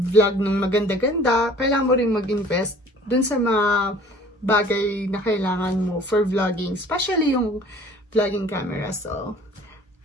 ng maganda-ganda, kailangan mo rin mag-invest dun sa mga bagay na kailangan mo for vlogging, especially yung vlogging camera. So,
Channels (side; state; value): both; normal; correlation 0.50